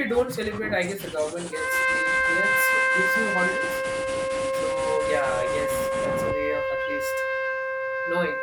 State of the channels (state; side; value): identical; both; correlation 1.00